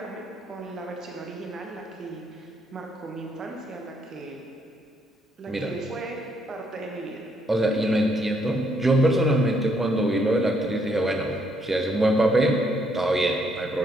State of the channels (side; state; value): both; normal; correlation 0.72